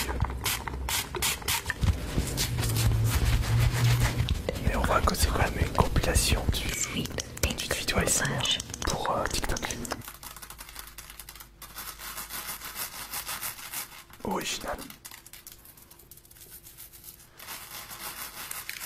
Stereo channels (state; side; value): identical; both; correlation 1.00